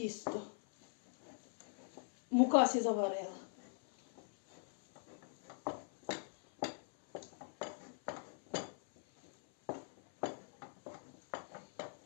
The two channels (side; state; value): right; silent; 50 dB below the other